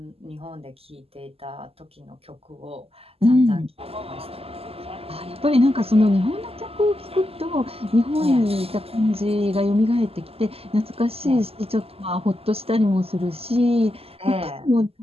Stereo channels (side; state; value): left; late; 0.29 ms